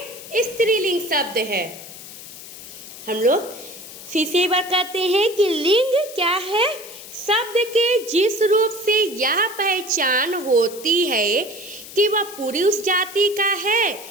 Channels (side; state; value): left; noise; hiss, 15 dB below the sound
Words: स्त्रीलिंग शब्द है। हम लोग फिर से एक बार कहते हैं कि लिंग क्या है, शब्द के जिस रूप से यह पहचान होती है कि वह पुरुष जाति का है